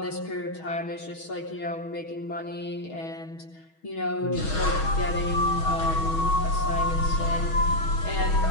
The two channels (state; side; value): late; right; 6.3 ms